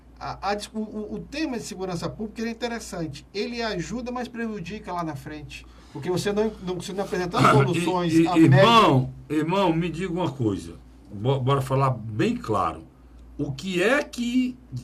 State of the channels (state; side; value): identical; both; correlation 1.00